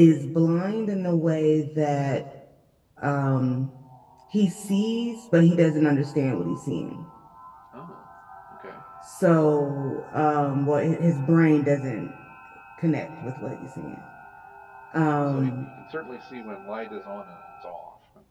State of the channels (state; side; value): identical; both; correlation 1.00